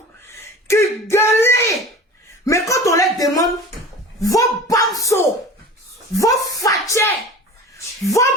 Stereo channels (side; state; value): both; normal; correlation 0.38